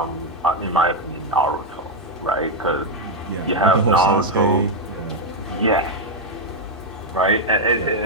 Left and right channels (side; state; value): both; normal; correlation 0.02